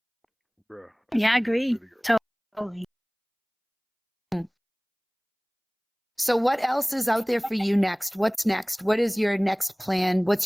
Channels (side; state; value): both; identical; correlation 1.00